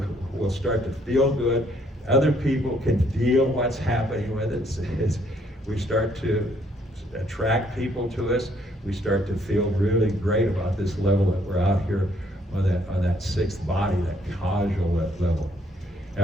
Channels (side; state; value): both; normal; correlation 0.67